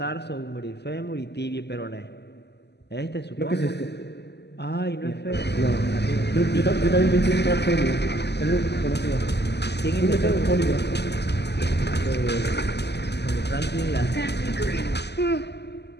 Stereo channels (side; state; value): right; late; 0.49 ms